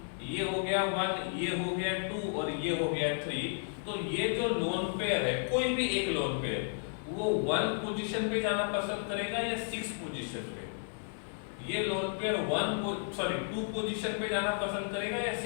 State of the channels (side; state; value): right; silent; digital silence